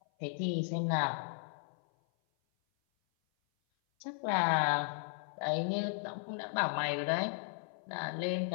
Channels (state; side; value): silent; right; 54 dB below the other